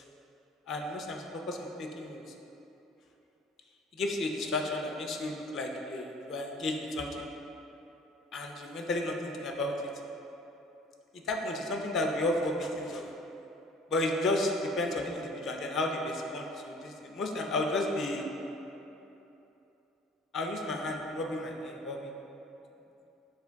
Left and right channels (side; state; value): both; normal; correlation 0.50